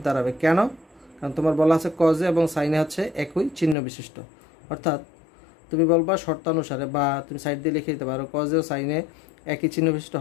দাঁড়াবে। কেন? কারণ তোমার বলা আছে কজে এবং সাইনে হচ্ছে একই চিহ্ন বিশিষ্ট, অর্থাৎ তুমি বলবা শর্তানুসারে, বা তুমি সাইড দিয়ে লিখে দিতে পারো কজে ও সাইনে একই চিহ্ন বিশিষ্ট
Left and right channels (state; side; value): drops out; right; at 3.8 s